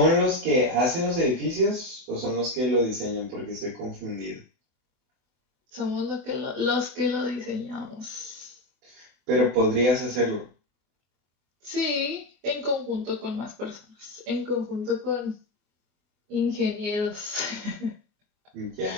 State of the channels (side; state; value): left; late; 24 ms